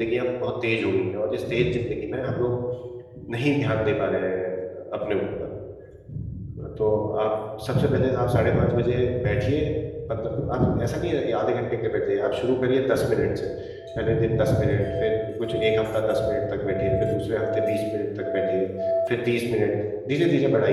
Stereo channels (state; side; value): identical; both; correlation 1.00